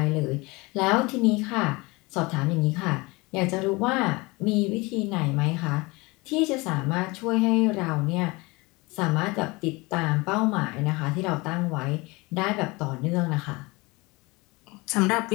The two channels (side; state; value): right; quieter; 24.4 dB